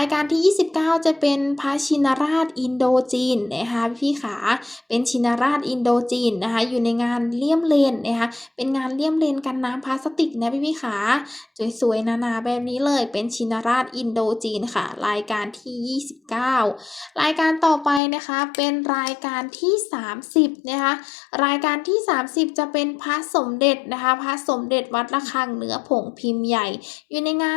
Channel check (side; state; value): right; drops out; at 18.0 s